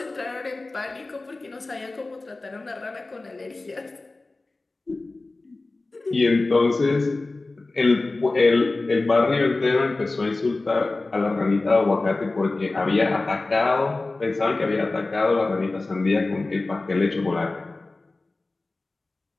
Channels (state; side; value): quieter; right; 3.2 dB